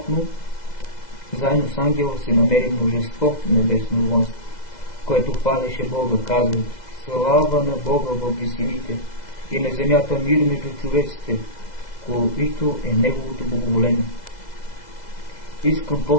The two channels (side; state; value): right; late; 2.0 ms